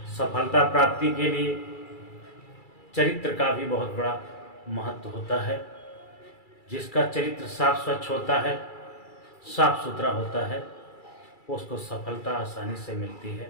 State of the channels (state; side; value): late; right; 2.3 ms